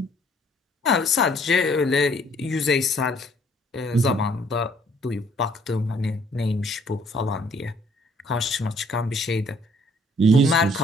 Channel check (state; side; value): normal; both; correlation 0.62